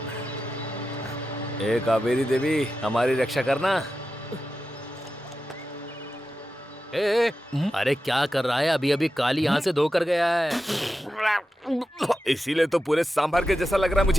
ए कावेरी देवी, हमारी रक्षा करना। अरे क्या कर रहा है? अभी अभी काली यहाँ से धोकर गया है। इसीलिए तो पूरे सांभर के जैसा लग रहा है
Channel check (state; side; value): normal; both; correlation 0.91